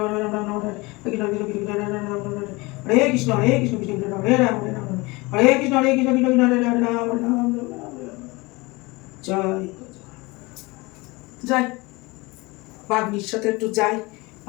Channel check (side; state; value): right; quieter; 23.9 dB